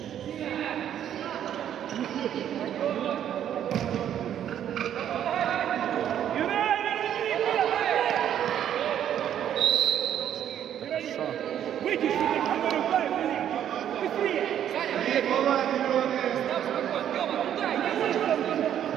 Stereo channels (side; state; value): left; quieter; 10.2 dB